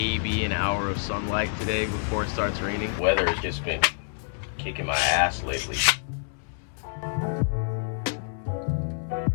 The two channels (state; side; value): silent; right; 60 dB below the other